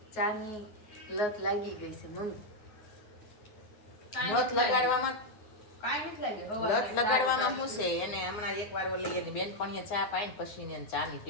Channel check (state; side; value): late; right; 9.8 ms